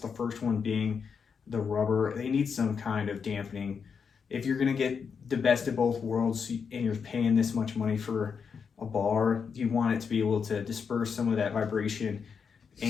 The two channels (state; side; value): quieter; right; 6.2 dB